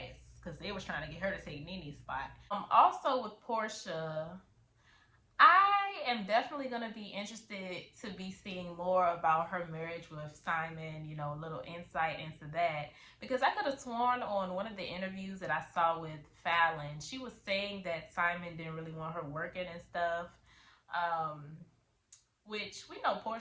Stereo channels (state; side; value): identical; both; correlation 1.00